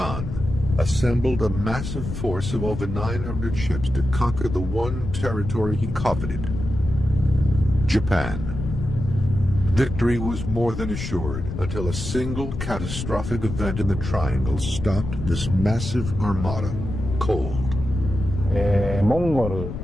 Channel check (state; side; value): noise; left; rumble, 6 dB below the sound